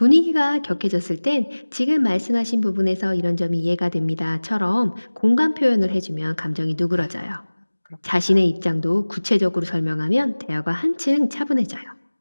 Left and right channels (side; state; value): both; inverted; correlation -1.00